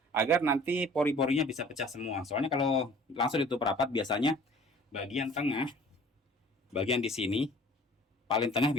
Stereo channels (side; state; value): both; normal; correlation 0.49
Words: agar nanti pori-porinya bisa pecah semua. Soalnya kalau langsung ditutup rapat biasanya bagian tengah, bagian di sini paling tengah